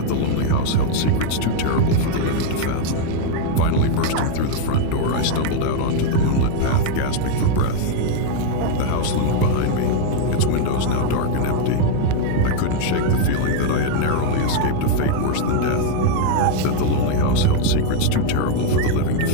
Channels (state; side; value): different; both; correlation 0.00